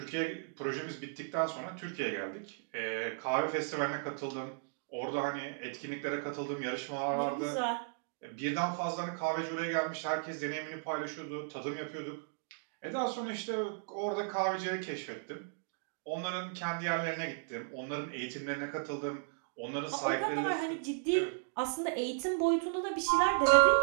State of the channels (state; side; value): silent; left; digital silence